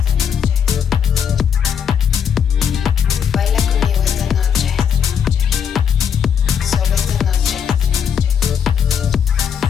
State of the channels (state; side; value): quieter; right; 7.8 dB